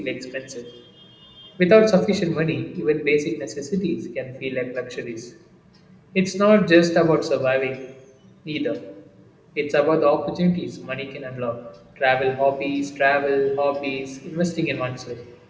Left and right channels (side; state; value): both; identical; correlation 1.00